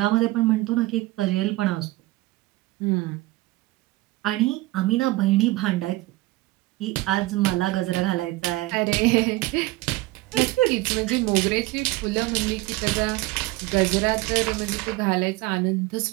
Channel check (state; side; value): quieter; left; 19.6 dB